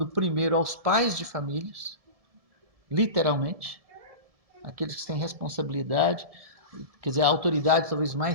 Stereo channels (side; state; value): left; late; 1.7 ms